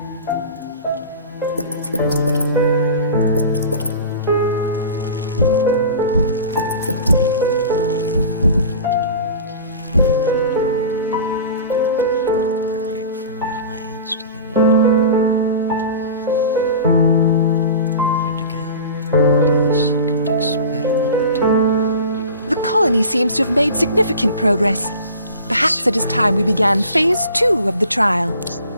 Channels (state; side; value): inverted; both; correlation -0.38